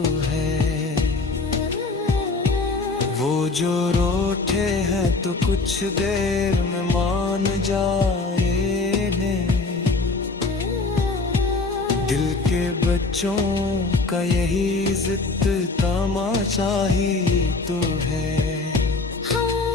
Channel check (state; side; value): quieter; right; 3.7 dB